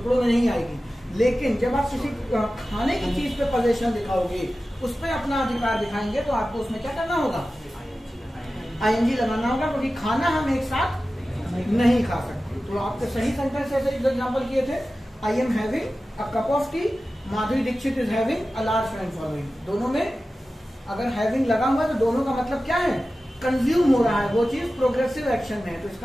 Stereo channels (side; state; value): both; normal; correlation 0.95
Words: में नहीं आएगी। लेकिन जब आप किसी खाने की चीज पे पोजीशन दिखाओगे, उस पर अपना अधिकार दिखाएंगे, तो आपको उसमें क्या करना होगा? आईएनजी लगाना होगा, क्योंकि खाना हम एक साथ नहीं खा सकते। तो आपके सही सेंटेंस ऐसे एग्जाम्पल किए थे। I am having a cup of tea, Madhuri Dixit is having a large friend following. दोनों में अगर हैविंग लगा हुआ है तो दोनों का मतलब क्या है? कंज्यूम हो रहा है वो चीज, प्रोग्रेसिव एक्शन में है। तो